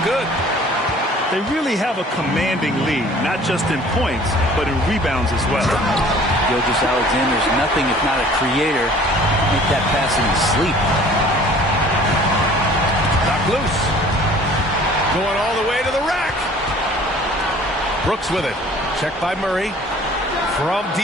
good. They really have a commanding lead, not just in points, but in rebounds as well. Gilgeous-Alexander's nothing if not a creator. Make that pass in his sleep. Knock loose. Going all the way to the rack. Brooks with it. Checked by Murray. From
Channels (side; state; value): both; normal; correlation 0.50